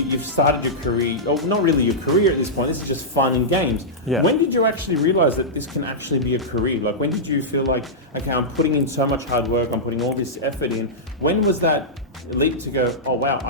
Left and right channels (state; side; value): normal; both; correlation -0.12